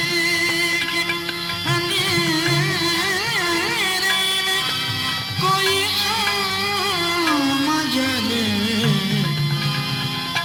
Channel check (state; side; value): identical; both; correlation 1.00